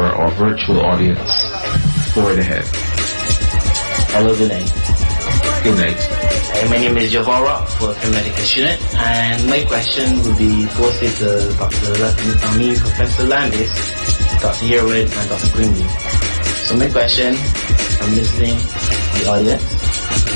virtual audience. Go right ahead. Hello, good night. Good night. My name is Javara, working medical student, and my question would be posted to Professor Landis, Dr. Herwood, and Dr. Grimley. So my question, I'm listening to the audience.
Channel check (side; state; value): both; inverted; correlation -1.00